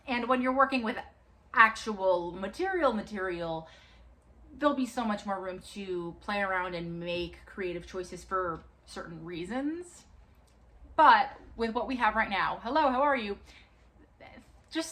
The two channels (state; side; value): identical; both; correlation 1.00